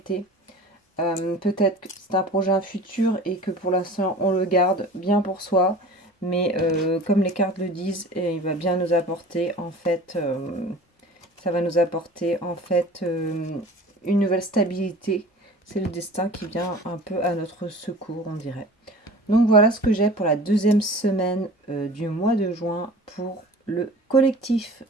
Peut-être que c'est un projet futur et que pour l'instant on le garde bien pour soi, mais comme les cartes le disent, il va bien nous apporter en fait, ça va nous apporter en fait une nouvelle stabilité. C'est le destin qui vient un peu à notre secours, on dirait. Donc voilà ce que j'ai pour la deuxième semaine du mois de juin pour le collectif.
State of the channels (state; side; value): normal; both; correlation 0.41